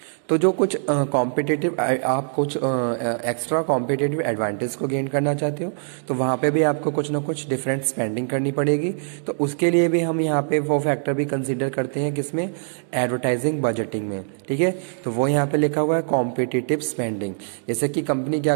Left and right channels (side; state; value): left; silent; digital silence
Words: तो जो कुछ कॉम्पिटिटिव आप कुछ एक्स्ट्रा कॉम्पिटिटिव एडवांटेज को गेन करना चाहते हो तो वहाँ पे भी आपको कुछ ना कुछ डिफरेंट स्पेंडिंग करनी पड़ेगी। तो उसके लिए भी हम यहाँ पे वो फैक्टर भी कंसीडर करते हैं किसमें, एडवर्टाइजिंग बजटिंग में। ठीक है, तो वो यहाँ पे लिखा हुआ है कॉम्पिटिटिव स्पेंडिंग। जैसे कि कंपनी क्या